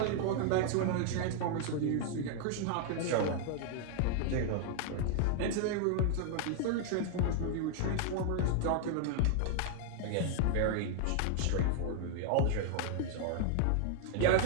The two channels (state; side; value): different; both; correlation 0.00